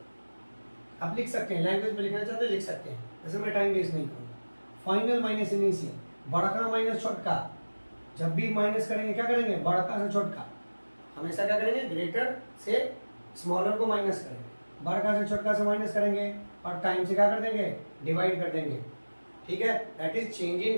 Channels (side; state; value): both; inverted; correlation -1.00